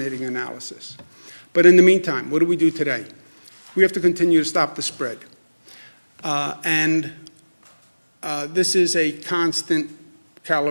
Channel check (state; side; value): inverted; both; correlation -1.00